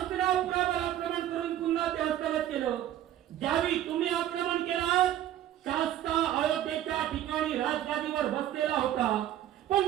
आक्रमण करून पुन्हा ते हस्तगत केलं. ज्यावेळी तुम्ही आक्रमण केलं, शास्ता अयोध्येच्या ठिकाणी राजगादीवर बसलेला होता. पण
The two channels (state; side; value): quieter; left; 12.2 dB